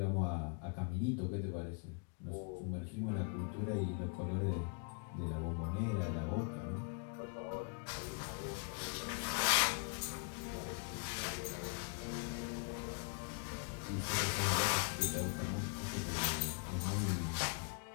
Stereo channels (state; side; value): quieter; right; 39.6 dB